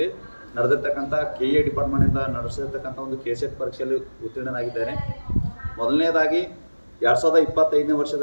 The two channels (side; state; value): both; inverted; correlation -1.00